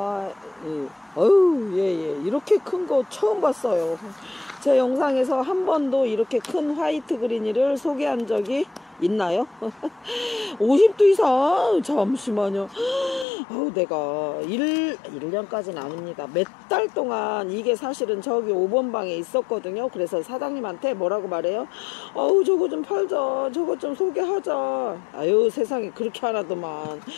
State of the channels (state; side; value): drops out; right; at 13.2 s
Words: 예. 이렇게 큰 거 처음 봤어요. 제 영상에서 한 번도 이렇게 큰 화이트 그린이를 소개한 적이 있나요? 50도 이상? 잠시만요. 내가 1년까지는 아닙니다. 몇 달 동안 이게 사실은 저기 5번 방에 있었거든요. 그래서 사장님한테 뭐라고 말해요? 저거 좀 팔자. 저거 좀 소개하자. 아유, 세상에 그렇게 하나더만.